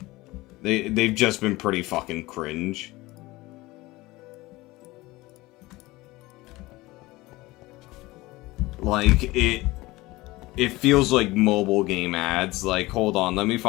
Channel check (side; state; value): right; quieter; 20.1 dB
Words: They've just been pretty fucking cringe. Like, it feels like mobile game ads. Like, hold on, let me